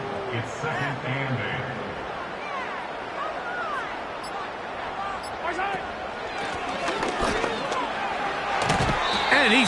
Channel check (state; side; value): identical; both; correlation 1.00